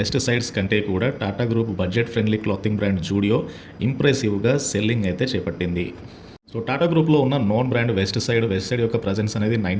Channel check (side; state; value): both; identical; correlation 1.00